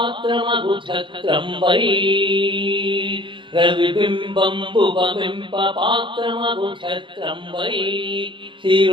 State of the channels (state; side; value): late; left; 0.24 ms